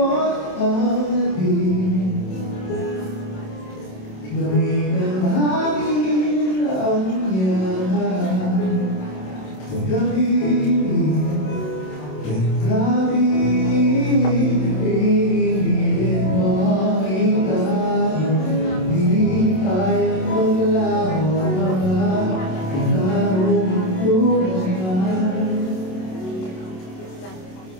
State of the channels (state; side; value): late; right; 27 ms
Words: ang nabing. Gawin ang hangin ang yaman. Pagkabili, pinipilit mo ang itayo. Di kayang maglaho mga ilarong tulad.